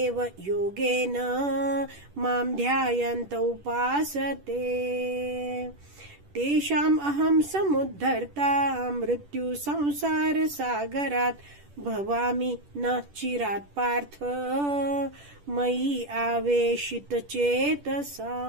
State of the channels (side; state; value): left; late; 10 ms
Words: योगेन मां ध्यायन्त उपासते तेषाम् अहं समुद्धर्ता मृत्यु संसार सागरात् भवामि न चिरात् पार्थ मयि आवेशित